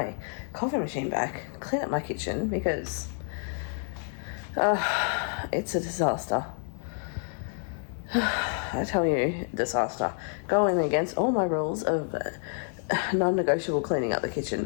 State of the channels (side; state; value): right; silent; 58 dB below the other